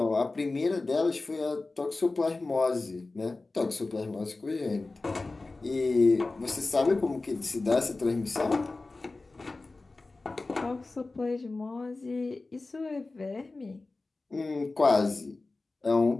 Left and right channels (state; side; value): quieter; right; 3.4 dB